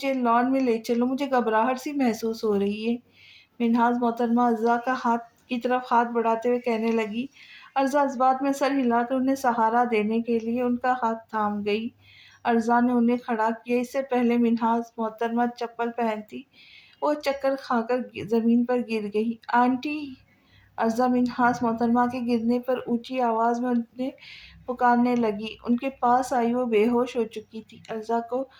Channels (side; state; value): both; identical; correlation 1.00